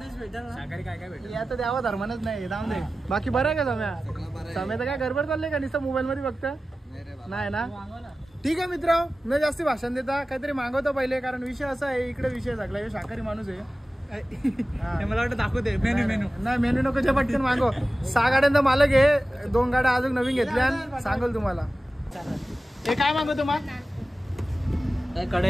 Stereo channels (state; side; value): normal; both; correlation 0.95